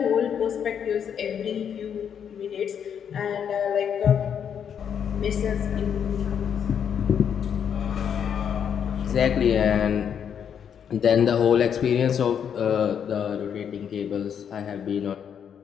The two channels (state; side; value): quieter; right; 8.1 dB